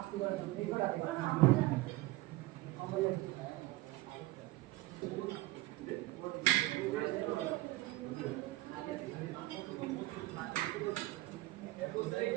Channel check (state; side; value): quieter; left; 18.9 dB